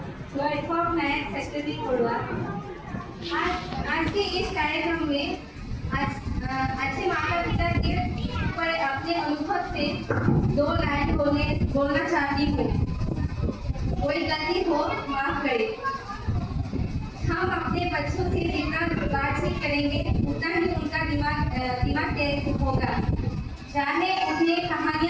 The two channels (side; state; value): both; identical; correlation 1.00